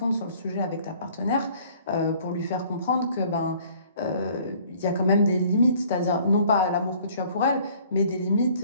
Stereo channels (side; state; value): both; inverted; correlation -0.55